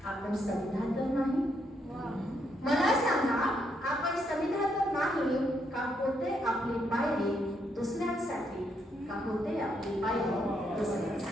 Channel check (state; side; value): normal; both; correlation 0.76